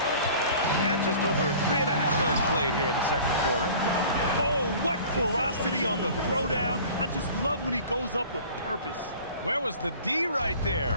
And just over 3.5 minutes played here in the second quarter. Oh, what ferocity on the throwdown. I just love when he goes up with purpose. Where was the D right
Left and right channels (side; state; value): both; inverted; correlation -0.45